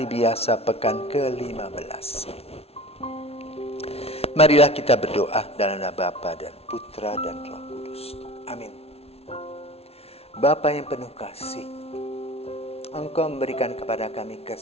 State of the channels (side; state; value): right; late; 0.30 ms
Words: biasa pekan ke-15. Marilah kita berdoa dalam nama Bapa dan Putra dan Roh Kudus. Amin. Bapa yang penuh kasih, Engkau memberikan kepada kami